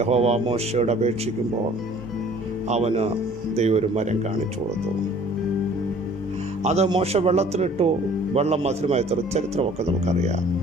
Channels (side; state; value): both; normal; correlation 0.52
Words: മോശയോട് അപേക്ഷിക്കുമ്പോൾ അവന് ദൈവം ഒരു മരം കാണിച്ചു കൊടുത്തു. അത് മോശ വെള്ളത്തിലിട്ടു. വെള്ളം മധുരമായ ചരിത്രമൊക്കെ നമുക്കറിയാം.